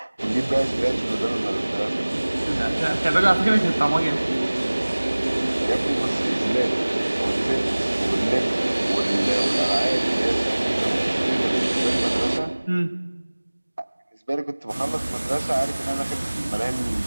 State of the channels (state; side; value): inverted; both; correlation -1.00